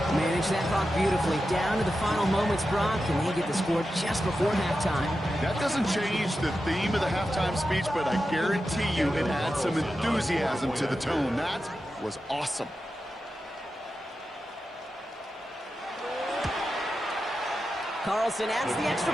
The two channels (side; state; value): both; normal; correlation 0.91